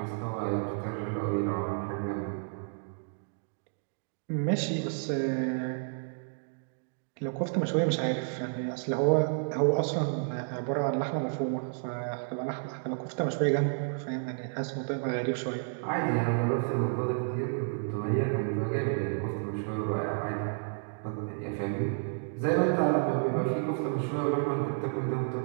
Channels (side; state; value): left; silent; digital silence